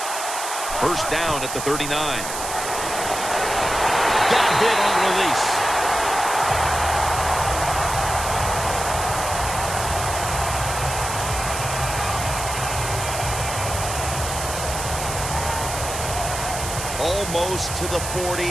1st down at the 39. Got hit on release. Almost to the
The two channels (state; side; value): noise; right; hiss, 6 dB below the sound